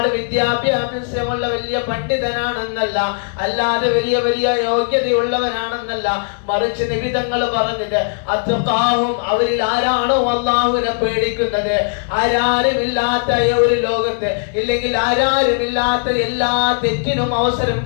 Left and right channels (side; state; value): right; silent; digital silence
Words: വിദ്യാഭ്യാസമുള്ള വലിയ പണ്ഡിതനാണെന്നല്ല, അല്ലാതെ വലിയ വലിയ യോഗ്യതയുള്ളവനാണെന്നല്ല, മറിച്ച് നബി തങ്ങൾ പറഞ്ഞത് അത്ഖാഹും, അവരിൽ ആരാണോ അള്ളാഹുവിനെ പേടിക്കുന്നത്, ആരാരുമില്ലാത്ത ഒരു ലോകത്ത്, ഇല്ലെങ്കിൽ ആരാരുമില്ലാത്ത എല്ലാ തെറ്റിനും അവസരം